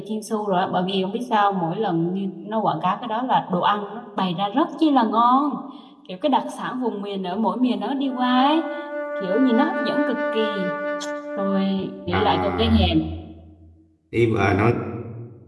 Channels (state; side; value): identical; both; correlation 1.00